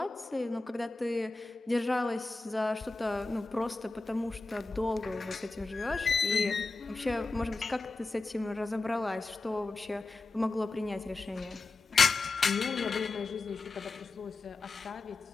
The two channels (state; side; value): quieter; right; 3.6 dB